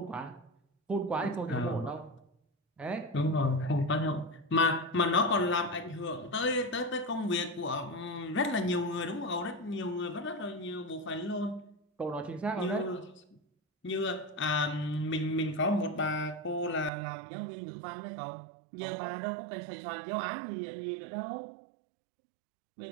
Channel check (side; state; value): left; drops out; at 16.9 s